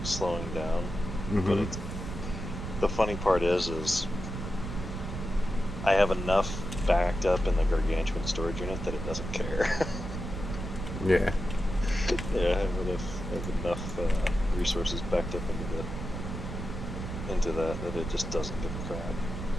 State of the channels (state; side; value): noise; right; rumble, 6 dB below the sound